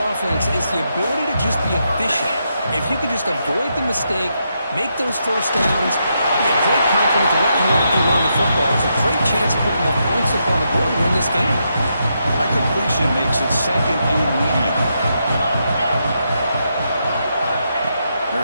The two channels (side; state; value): both; inverted; correlation -0.81